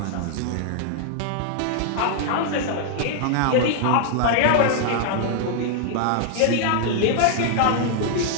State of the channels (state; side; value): different; both; correlation 0.00